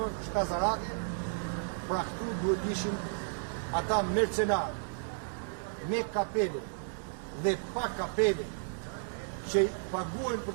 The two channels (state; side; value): silent; left; 56 dB below the other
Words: shkazarake. Pra këtu duhet ishin ata mercenarë me kapele dhe pa kapele që paguajnë